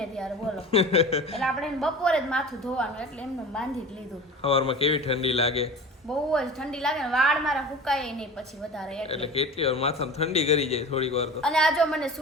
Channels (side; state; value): both; normal; correlation 0.35